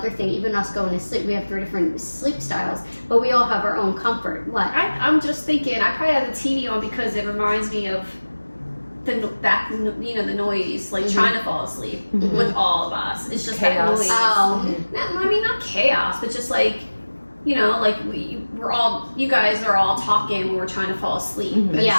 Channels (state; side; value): inverted; both; correlation -1.00